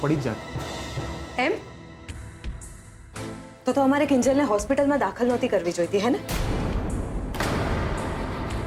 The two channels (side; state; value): both; identical; correlation 1.00